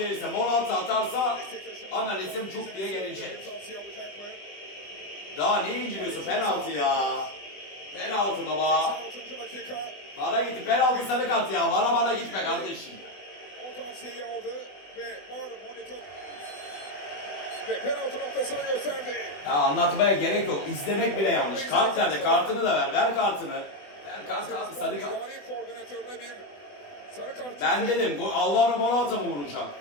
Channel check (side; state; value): right; late; 20 ms